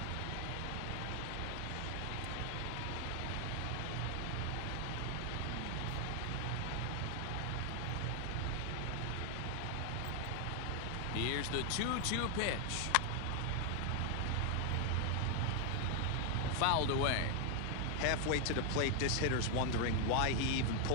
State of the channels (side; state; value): both; different; correlation 0.00